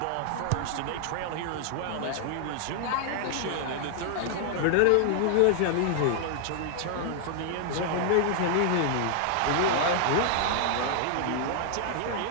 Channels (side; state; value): both; different; correlation 0.00